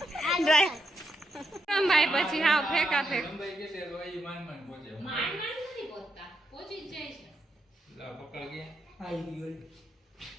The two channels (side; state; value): both; normal; correlation 0.81